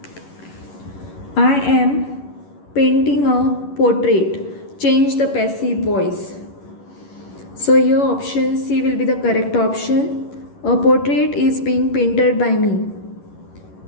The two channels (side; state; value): right; late; 11 ms